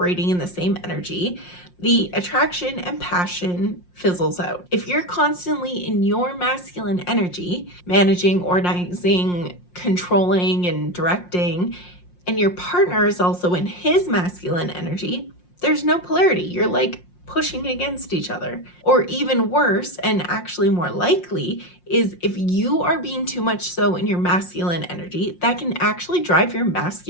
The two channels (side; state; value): right; late; 5.6 ms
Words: in the same energy, the attraction and passion fizzles out. If you're constantly in your masculine energy, managing, organizing, controlling, and directing, and your partner is also in his masculine energy, there's no polarity. You're like pushing against each other. Or even worse, and actually more likely, is if you are being too much so in your masculine energy, that can actually drive your